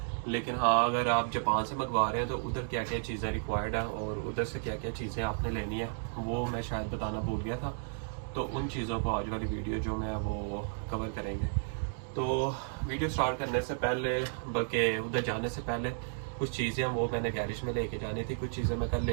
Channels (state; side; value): silent; left; digital silence